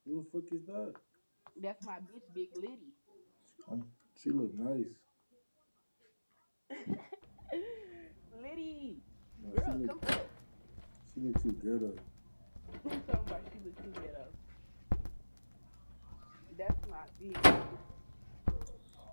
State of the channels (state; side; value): inverted; both; correlation -1.00